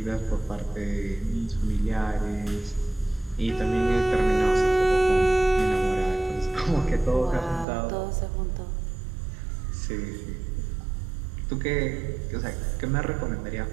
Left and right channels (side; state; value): left; drops out; at 7.7 s